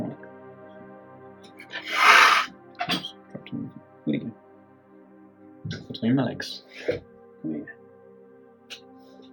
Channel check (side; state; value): both; identical; correlation 1.00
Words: Oops, dropped him. Where'd he go? Between my legs.